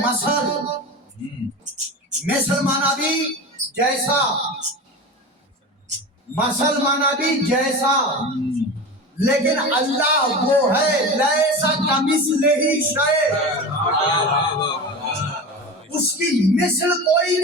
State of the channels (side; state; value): both; normal; correlation 0.28